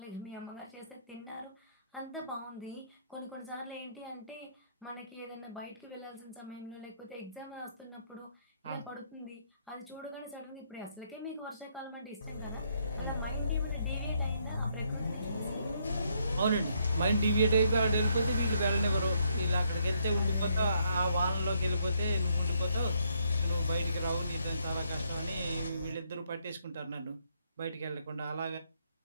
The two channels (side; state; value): both; inverted; correlation -0.73